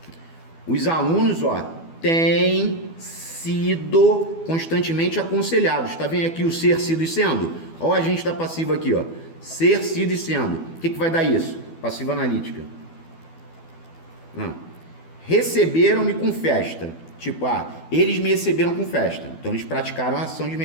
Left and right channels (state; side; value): late; right; 12 ms